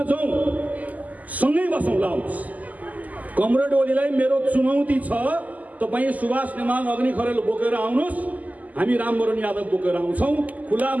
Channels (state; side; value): late; left; 0.078 ms